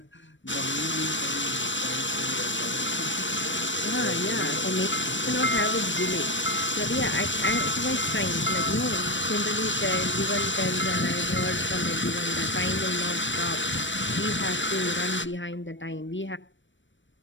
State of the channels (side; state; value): right; late; 0.54 ms